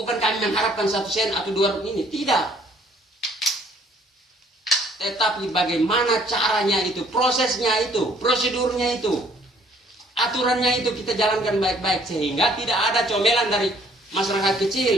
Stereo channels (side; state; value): both; normal; correlation 0.61